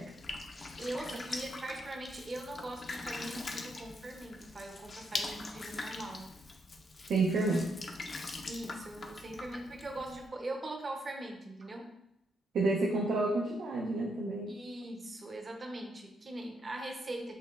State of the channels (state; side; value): normal; both; correlation 0.78